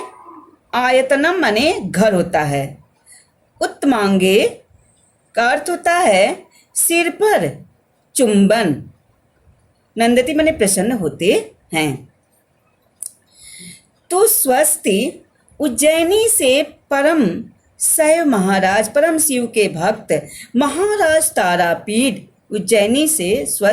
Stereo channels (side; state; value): both; identical; correlation 1.00